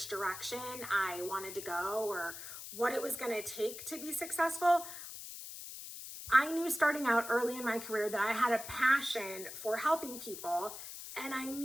direction I wanted to go or what it was going to take to be successful. I knew starting out early in my career that I had a passion for helping people, and I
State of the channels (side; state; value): left; noise; hiss, 10 dB below the sound